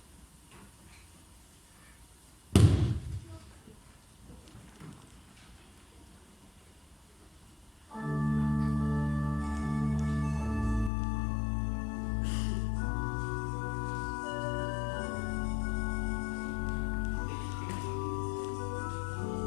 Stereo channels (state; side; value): drops out; right; at 10.9 s